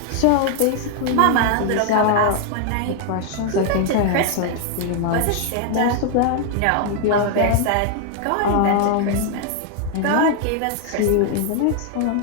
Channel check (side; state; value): both; different; correlation 0.00